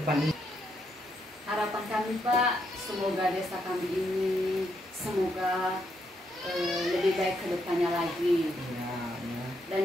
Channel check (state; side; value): normal; both; correlation 0.78